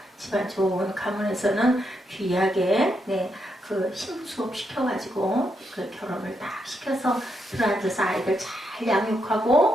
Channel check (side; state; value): both; normal; correlation 0.80